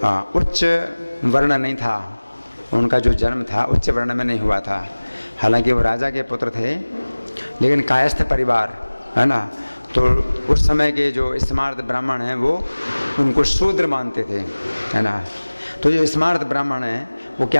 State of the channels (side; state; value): both; inverted; correlation -1.00